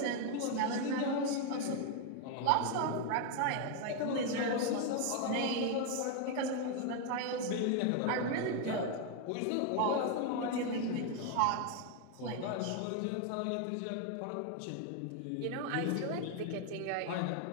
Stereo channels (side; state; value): both; different; correlation 0.01